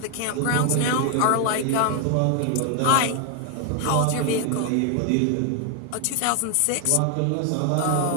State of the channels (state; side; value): different; both; correlation 0.00